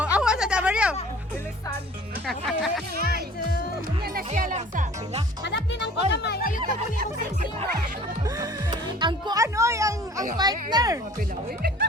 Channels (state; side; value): normal; both; correlation 0.49